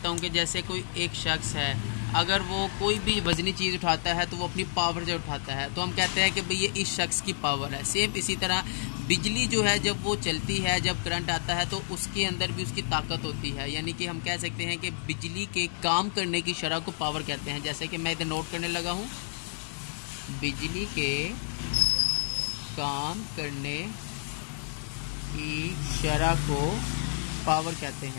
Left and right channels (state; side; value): silent; right; digital silence